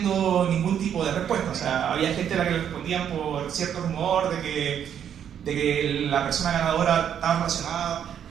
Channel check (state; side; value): quieter; left; 9.0 dB